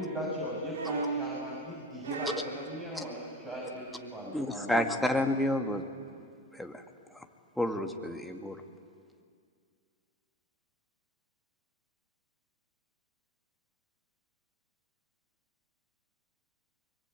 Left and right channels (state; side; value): normal; both; correlation 0.43